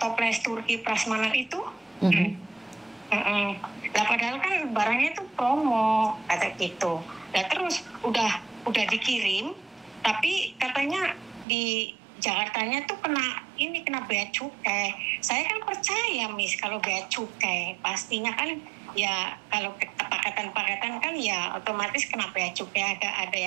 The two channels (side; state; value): left; drops out; at 11.5 s